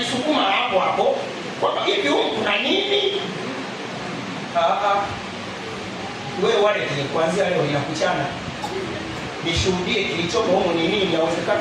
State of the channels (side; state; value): both; identical; correlation 1.00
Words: hapo kwamba hivi huko kuna nini? Wewe wale kuanzia leo inakuchana. Nishuhudie kilichopo huko ni nini, inawezekana